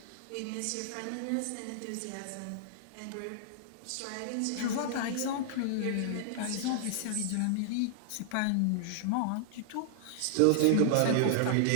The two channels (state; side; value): different; both; correlation -0.01